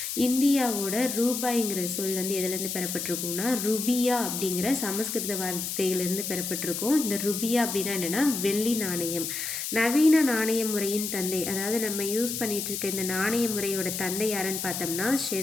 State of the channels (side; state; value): left; noise; hiss, 4 dB below the sound